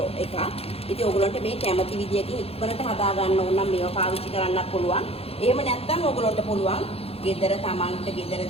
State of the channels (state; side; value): late; right; 0.29 ms